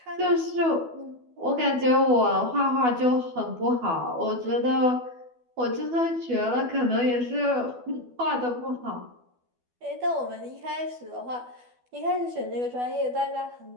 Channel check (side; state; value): left; late; 12 ms